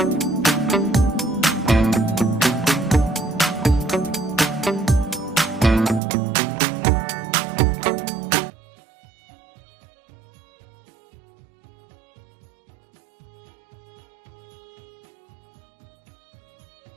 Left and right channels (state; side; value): drops out; left; at 6.0 s